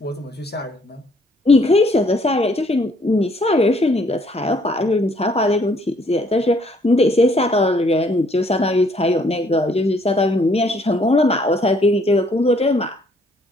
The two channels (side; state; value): both; normal; correlation 0.65